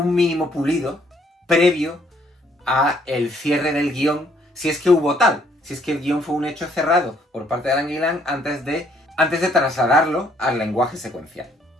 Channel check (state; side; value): normal; both; correlation 0.66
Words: mínimo pulido previo a el cierre del guión, si es que hubo tal. Si es que el guión fue un hecho cerrado por parte de Alan Gillan antes de trasladarlo al lenguaje secuencial.